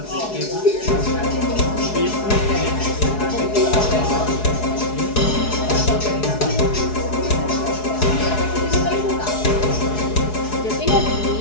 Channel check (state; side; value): late; right; 4.7 ms